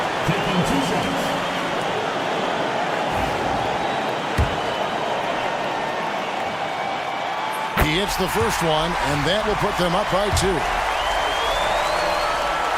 Taking 2 shots. He hits the first one, and that will put them up by 2.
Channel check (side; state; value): both; identical; correlation 1.00